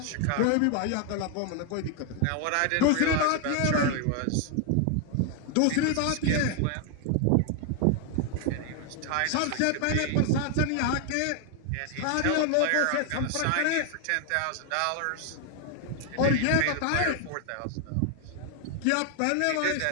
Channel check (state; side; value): different; both; correlation 0.00